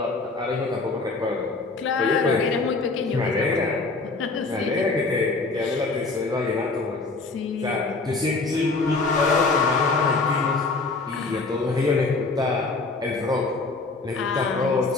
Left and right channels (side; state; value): right; quieter; 3.7 dB